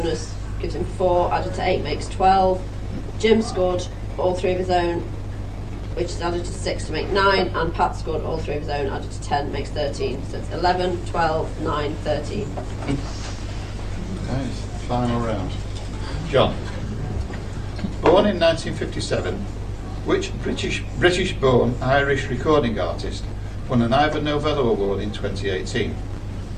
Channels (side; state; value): both; identical; correlation 1.00